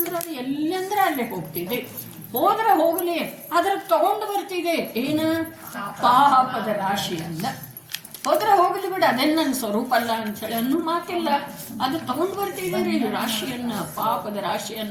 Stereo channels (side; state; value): both; identical; correlation 1.00